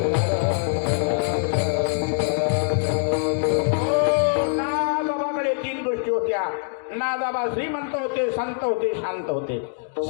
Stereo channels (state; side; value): silent; right; digital silence